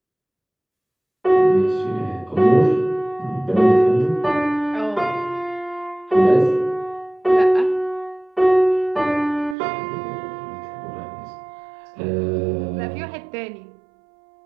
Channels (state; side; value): drops out; left; at 9.6 s